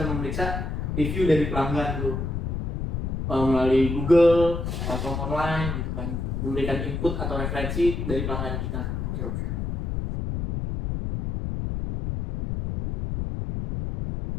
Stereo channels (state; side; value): noise; left; rumble, 2 dB below the sound